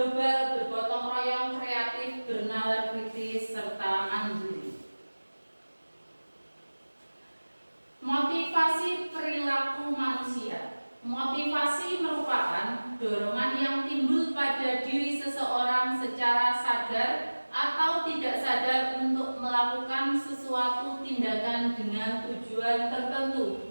bergotong royong, kreatif, bernalar kritis, serta mandiri. Motivasi perilaku manusia. Motivasi merupakan dorongan yang timbul pada diri seseorang secara sadar atau tidak sadar untuk melakukan sesuatu tindakan dengan tujuan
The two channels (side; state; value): both; inverted; correlation -1.00